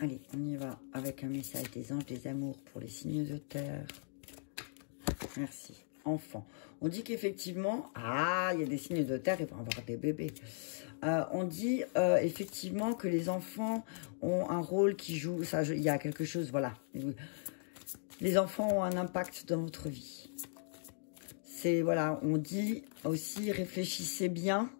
on y va avec un message des anges, des amours pour les signes de terre. Merci. Enfant. On dit qu'effectivement, il y a des signes de terre, il va y avoir des bébés. On dit effectivement que les enfants ont un rôle qui joue, ça, il y a quelque chose, voilà. Les enfants ont un impact dans votre vie. C'est, voilà, on dit aussi, réfléchissez bien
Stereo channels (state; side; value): silent; right; digital silence